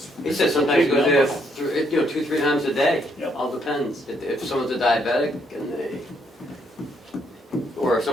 he said sometimes he Big goes number. there 2-3 times a day. Yep. All depends. If someone's a diabetic or if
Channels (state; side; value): normal; both; correlation 0.72